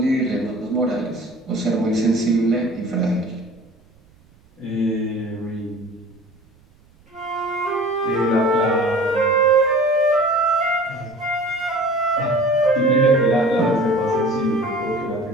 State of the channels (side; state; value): right; noise; rumble, 30 dB below the sound